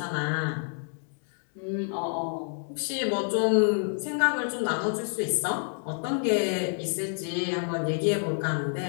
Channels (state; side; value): silent; right; 59 dB below the other